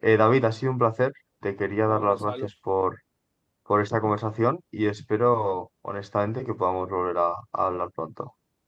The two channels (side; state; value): both; identical; correlation 1.00